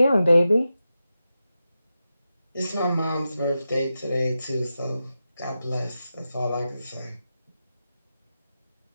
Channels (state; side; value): inverted; both; correlation -0.91